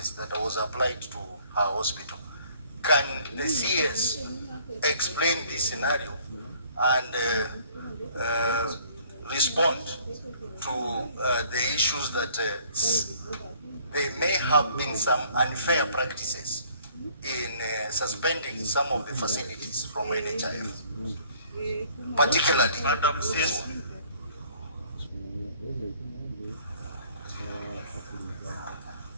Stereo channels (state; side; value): inverted; both; correlation -0.58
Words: that was applied to her hospital. Can the CS explain this scenario and respond to the issues that there may have been some unfair practices in suspending some of the facilities from NHIF, particularly Madam CS.